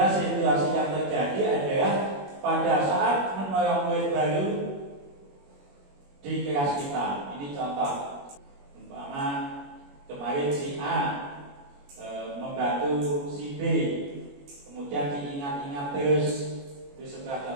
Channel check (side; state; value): left; late; 21 ms